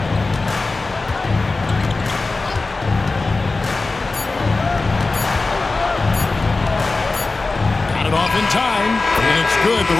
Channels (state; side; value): quieter; right; 3.6 dB